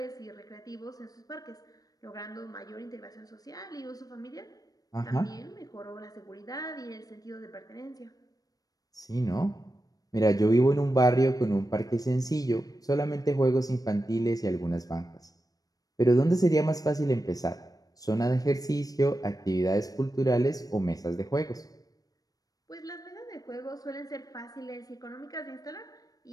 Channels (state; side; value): late; right; 0.18 ms